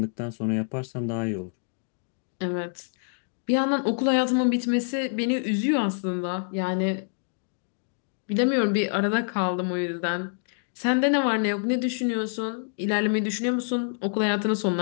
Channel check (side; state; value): right; silent; digital silence